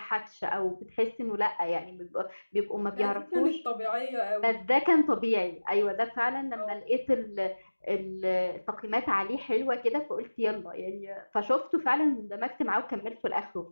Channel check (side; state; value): both; inverted; correlation -1.00